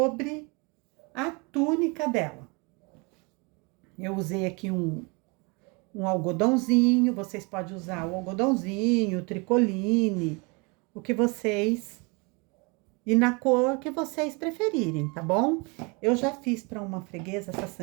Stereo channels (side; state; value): left; quieter; 29.9 dB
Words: a túnica dela. Eu usei aqui um algodãozinho, vocês podem usar o algodãozinho, o tricoline, o que vocês... E na cor que vocês preferirem, tá bom? Eu já fiz para uma freguesa essa